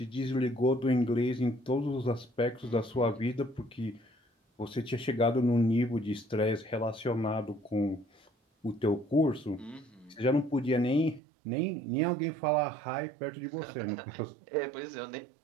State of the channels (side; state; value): left; drops out; at 11.2 s